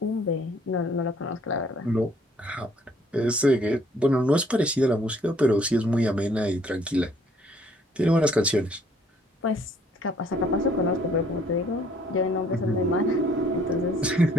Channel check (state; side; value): normal; both; correlation 0.62